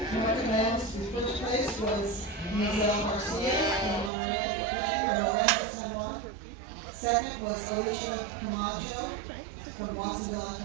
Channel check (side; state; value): left; drops out; at 4.1 s